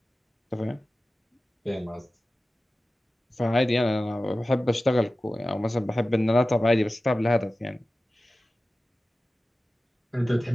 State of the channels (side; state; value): both; normal; correlation 0.96